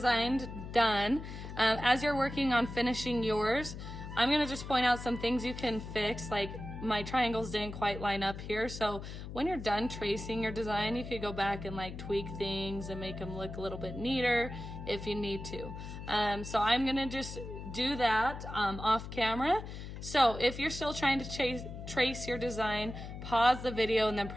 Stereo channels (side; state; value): left; noise; hum, 9 dB below the sound